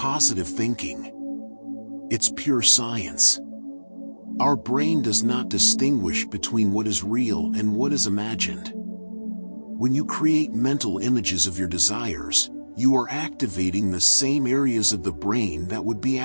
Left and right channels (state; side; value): inverted; both; correlation -1.00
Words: thinking. It's pure science. Our brain does not distinguish between what is real and what is imagined. When you create mental images of your desires, you are activating the same areas of the brain that would be